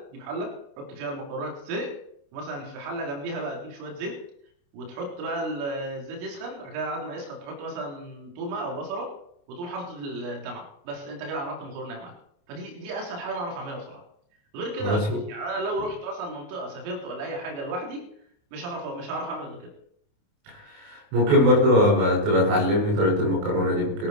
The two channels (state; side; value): late; left; 28 ms